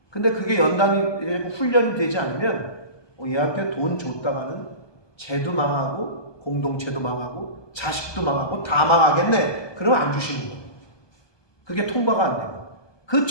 근데 그게 연단이 훈련이 되지 않으면 얘한테 돈 줬다가는 쟤도 망하고 공동체도 망하고 자식도 망하고 다 망하겠네. 그러면 안 주시는 거예요. 그게 통과가 안 돼요. 그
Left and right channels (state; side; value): late; right; 1.2 ms